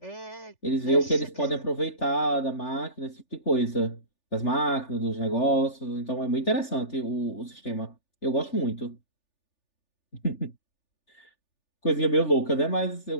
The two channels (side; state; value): right; late; 3.4 ms